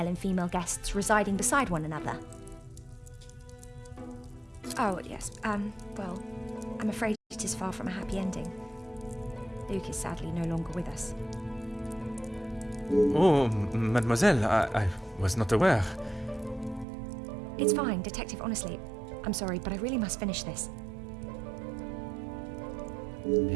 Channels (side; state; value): left; drops out; at 16.9 s